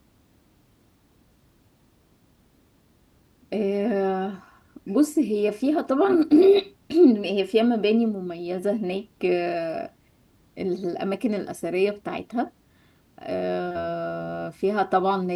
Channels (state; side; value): identical; both; correlation 1.00